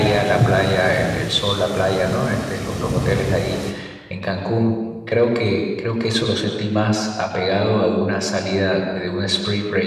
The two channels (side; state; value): both; identical; correlation 1.00